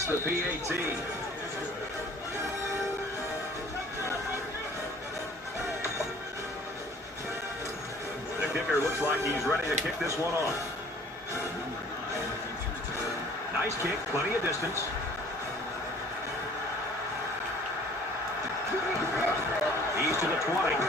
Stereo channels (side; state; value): both; normal; correlation 0.52